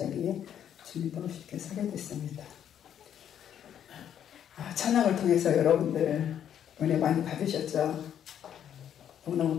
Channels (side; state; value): right; quieter; 9.6 dB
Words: 주님도 쉽게 서게 됐습니다. 찬양을 통해서 여러분들 은혜 많이 받으셨죠? 너무너무